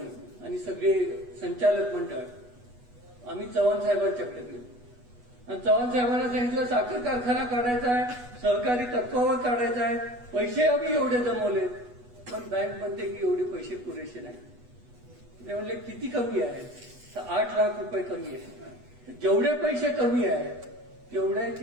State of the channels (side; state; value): left; late; 8.2 ms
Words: आणि सगळे संचालक मंडळ आम्ही चव्हाण साहेबांच्याकडे गेलो आणि चव्हाण साहेबांना सांगितलं साखर कारखाना काढायचा आहे, सहकारी तत्वावर काढायचा आहे. पैसे आम्ही एवढे जमवले पण बँक म्हणते की एवढे पैसे पुरेसे नाही. ते म्हणले किती कमी आहेत तर 8 लाख रुपये कमी आहेत. जेवढे पैसे कमी आहेत